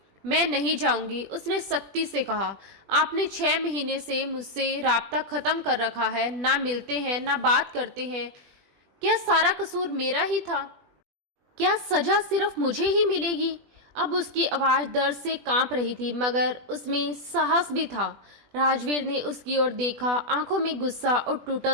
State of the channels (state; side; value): late; left; 20 ms